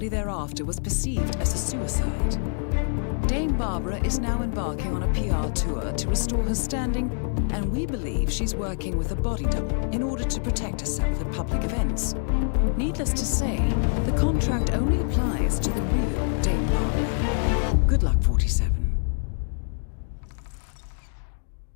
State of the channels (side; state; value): right; silent; 60 dB below the other